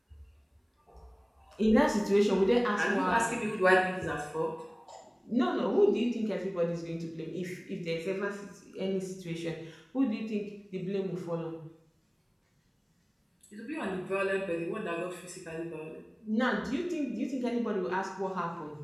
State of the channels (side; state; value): both; identical; correlation 1.00